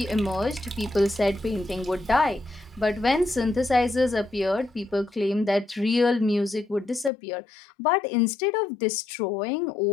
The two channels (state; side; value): drops out; right; at 7.1 s